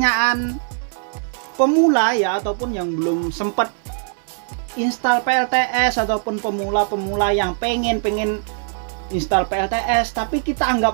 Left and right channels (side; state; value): left; silent; digital silence